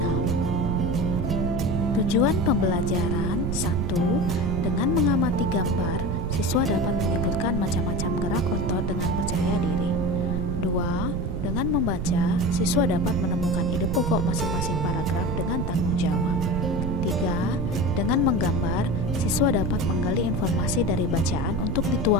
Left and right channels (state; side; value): noise; right; rumble, 2 dB below the sound